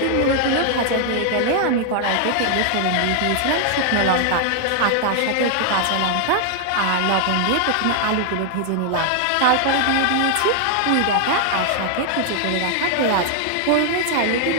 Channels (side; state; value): both; different; correlation 0.00